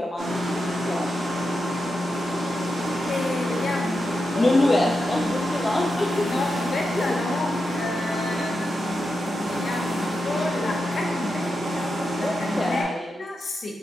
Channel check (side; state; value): both; normal; correlation 0.88